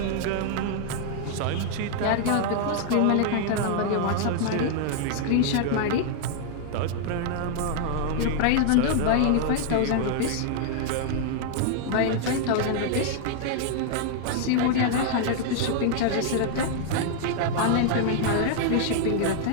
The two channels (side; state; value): both; different; correlation -0.01